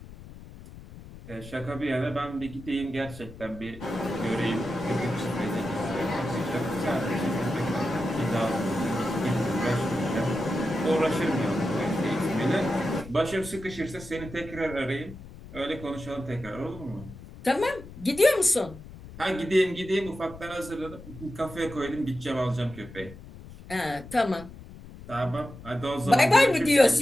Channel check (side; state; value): left; noise; rumble, 16 dB below the sound